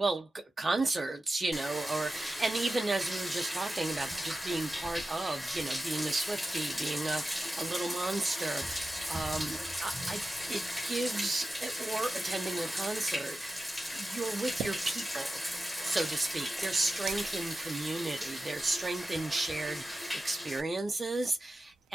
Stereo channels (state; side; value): normal; both; correlation 0.93